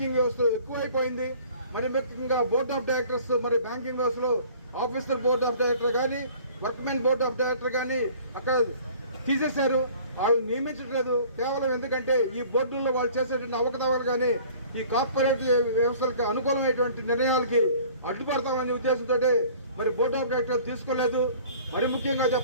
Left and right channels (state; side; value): inverted; both; correlation -0.50